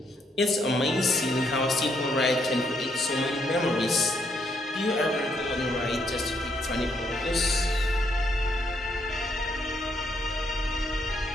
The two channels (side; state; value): both; normal; correlation 0.73